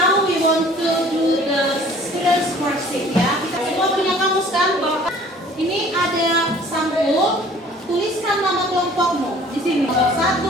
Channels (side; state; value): both; normal; correlation 0.52